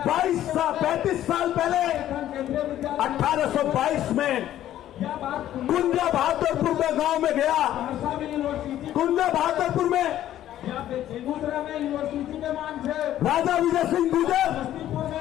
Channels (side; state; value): right; quieter; 12.4 dB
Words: 35 साल पहले 1822 में कुंजा बहादुरपुर में गांव में गया। कुंजा बहादुरपुर में राजा विजय सिंह गुर्जर,